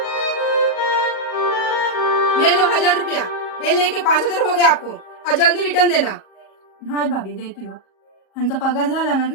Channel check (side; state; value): right; late; 38 ms